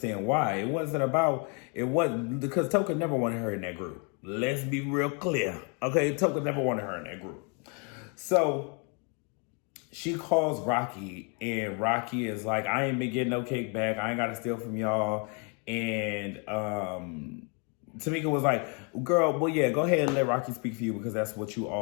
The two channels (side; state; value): right; quieter; 35.6 dB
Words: why. It wasn't because Toka never wanted her in that group. Let's be real clear. Okay, Toka never wanted her in that group. So she calls Rocky, and Rocky is like, I ain't been getting no kickback. I ain't got to steal from y'all. And Tamika was like, girl, well, yeah, go ahead and let Rocky speak for you because that's what you